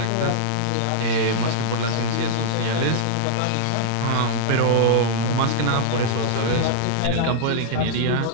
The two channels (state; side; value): different; both; correlation -0.01